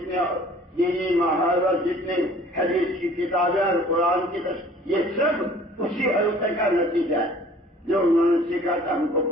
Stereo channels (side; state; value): both; normal; correlation 0.51